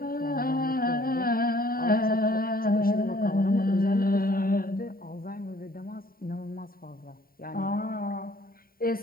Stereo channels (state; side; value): late; right; 0.43 ms